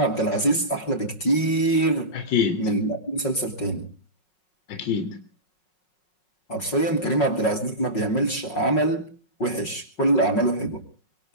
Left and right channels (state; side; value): late; right; 5.5 ms